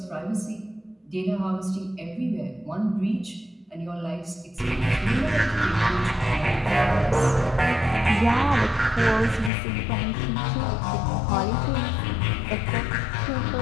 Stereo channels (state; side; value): drops out; right; at 9.5 s